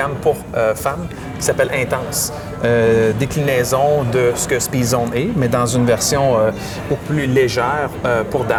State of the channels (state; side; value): identical; both; correlation 1.00